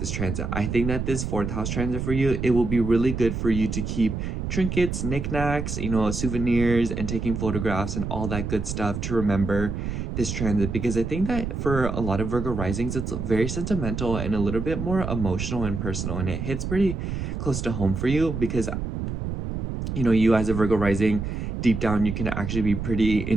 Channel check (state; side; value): noise; right; rumble, 4 dB below the sound